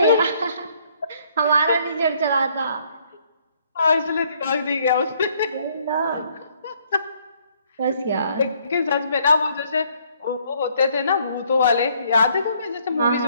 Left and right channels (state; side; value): inverted; both; correlation -0.66